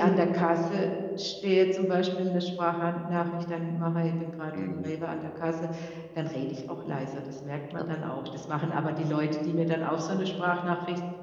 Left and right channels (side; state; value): both; identical; correlation 1.00